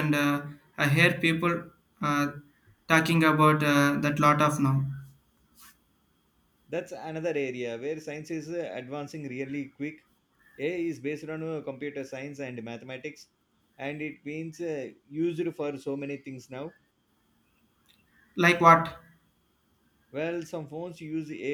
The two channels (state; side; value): identical; both; correlation 1.00